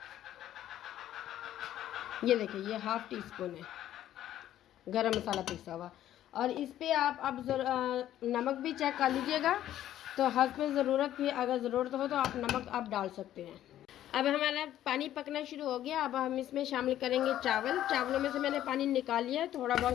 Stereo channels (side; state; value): right; quieter; 12.3 dB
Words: ये देखिए ये 1/2 टीस्पून है गरम मसाला पिसा हुआ। और इस पे आप अब नमक भी चेक कर लीजिएगा। तो हस्ब ज़रूरत भी अगर ज़रूरत हो तो आप नमक आप डाल सकते हैं। अब हमारा पानी पकना शुरू हो गया। अब हम इसमें शामिल करेंगे चावल। चावलों में से मैंने पानी निकाल लिया, थोड़ा